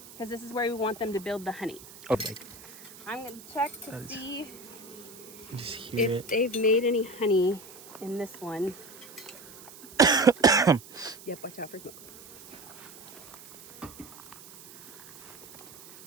because this is where we want them to build the honey. Okay. I'm gonna check to see just hear if they've made any honey in this one. Yep, watch out for smoke.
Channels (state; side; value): noise; right; hiss, 18 dB below the sound